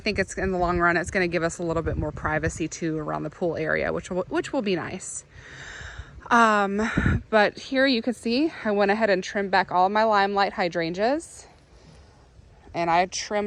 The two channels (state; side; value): identical; both; correlation 1.00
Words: it's, in the long run, it's going to give us a little bit more privacy too around the pool area, which will be nice. But here you can see, I went ahead and trimmed back all of my limelight hydrangeas, and I